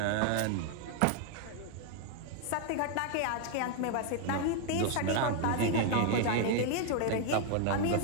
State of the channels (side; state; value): both; different; correlation 0.00